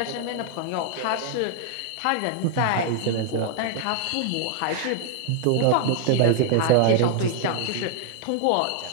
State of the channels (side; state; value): both; different; correlation 0.00